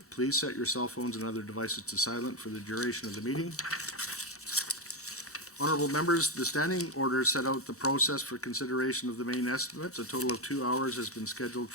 Please set your cell phones and other devices to silent for the duration of the meeting. Honourable members, the standing order set out the process for consideration of the main estimates. A total of 2 hours has been scheduled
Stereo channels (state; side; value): normal; both; correlation 0.08